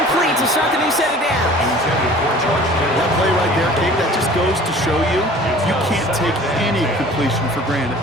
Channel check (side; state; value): both; normal; correlation 0.46